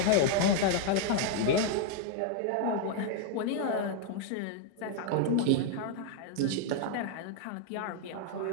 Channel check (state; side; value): different; both; correlation -0.01